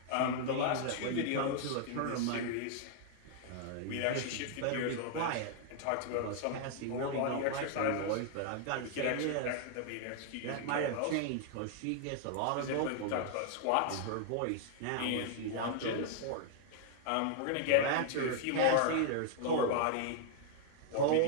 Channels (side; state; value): both; different; correlation 0.00